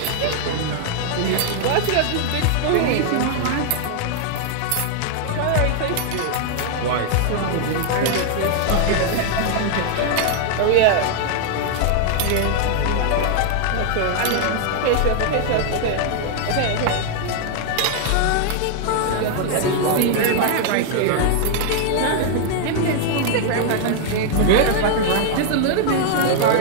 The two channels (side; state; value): both; different; correlation 0.00